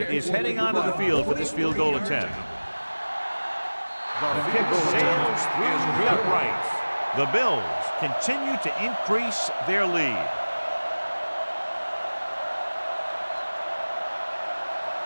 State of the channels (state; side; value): inverted; both; correlation -1.00